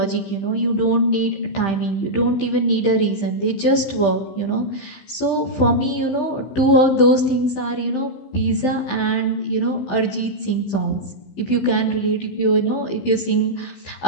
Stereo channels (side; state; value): right; late; 15 ms